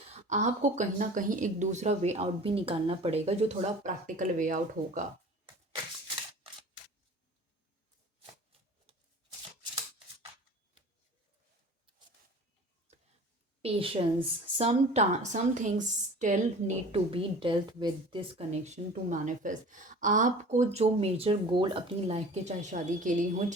आपको कहीं ना कहीं एक दूसरा वे आउट भी निकालना पड़ेगा, जो थोड़ा प्रैक्टिकल वे आउट होगा। Patience, some things still need to be dealt with this connection to manifest। आपको जो मेजर गोल अपनी लाइफ के, चाहे शादी के लिए हो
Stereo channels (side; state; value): both; normal; correlation 0.42